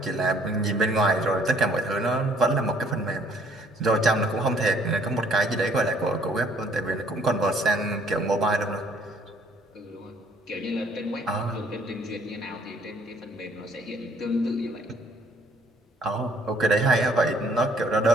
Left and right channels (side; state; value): both; normal; correlation 0.61